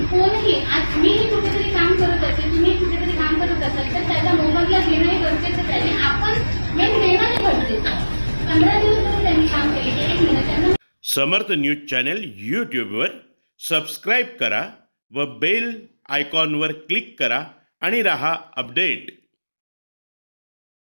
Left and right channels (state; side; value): inverted; both; correlation -1.00